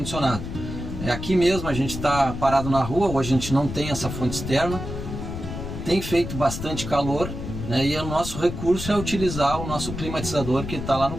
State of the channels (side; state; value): left; noise; rumble, 7 dB below the sound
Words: Aqui mesmo a gente está parado na rua, hoje a gente não tem essa fonte externa, tem feito bastante calor, né, e o nosso recurso é utilizar o nosso climatizador que está lá no